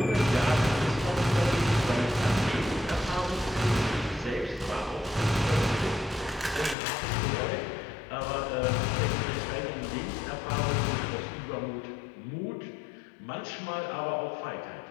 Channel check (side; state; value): right; drops out; at 6.8 s